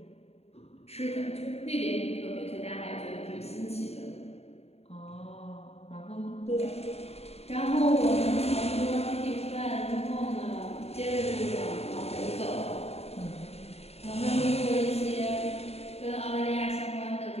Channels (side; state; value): right; late; 0.30 ms